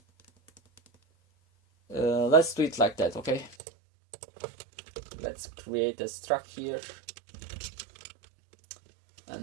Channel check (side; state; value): left; drops out; at 3.6 s